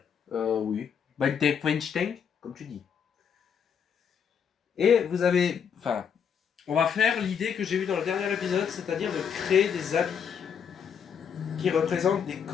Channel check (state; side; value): quieter; right; 7.4 dB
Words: Oui. Weinstein, comme tu dis. Et vous avez... Enfin, on va faire l'idée que j'ai eue dans le dernier épisode, c'est-à-dire de créer des habits qui représentent des